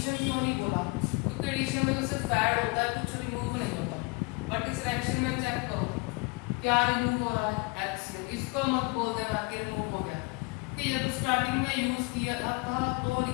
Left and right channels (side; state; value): right; quieter; 28.5 dB